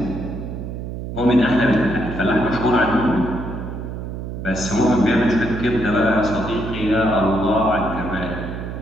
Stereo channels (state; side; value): noise; right; hum, 7 dB below the sound